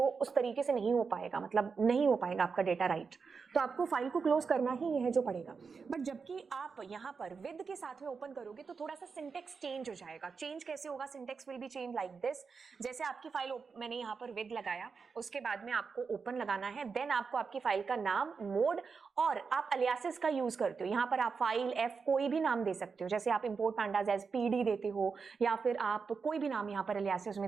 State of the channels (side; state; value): left; quieter; 5.2 dB